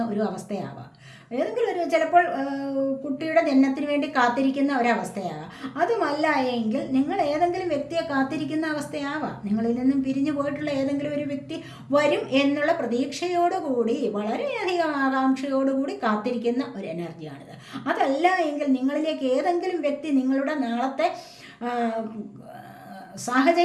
ഒരു അവസ്ഥയാവാം. ഏതെങ്കിലും ഒരു ചിലപ്പോൾ കുട്ടിയുടെ ജനനത്തിന് വേണ്ടി കാത്തിരിക്കുന്ന ഒരവസ്ഥയാവാം. അതുമല്ല എങ്കിൽ നിങ്ങൾ ഏതെങ്കിലും വ്യക്തിയെ കാത്തിരിക്കുന്ന അവസ്ഥയാവാം. നിങ്ങളിൽ നിന്നും പിരിഞ്ഞു പോയിട്ടുള്ള ഏതെങ്കിലും ഒരു വ്യക്തി വരും എന്നുള്ള പ്രതീക്ഷയോടുകൂടി, വളരെയധികം ആകാംക്ഷയോടുകൂടി കാത്തിരിക്കുന്ന ഒരു എനർജിയാണിത്. അതല്ല എങ്കിൽ നിങ്ങളിലേക്ക് ഏതെങ്കിലും വ്യക്തി നിങ്ങളുടെ നാളത്തെ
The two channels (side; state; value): both; identical; correlation 1.00